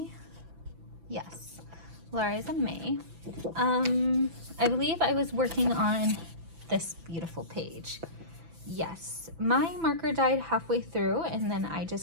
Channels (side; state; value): left; late; 6.0 ms